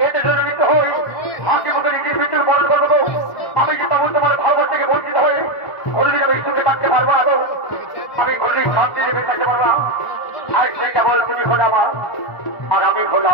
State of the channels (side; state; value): right; late; 1.4 ms